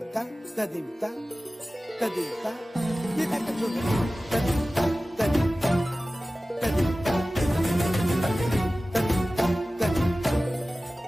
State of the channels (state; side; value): normal; both; correlation 0.96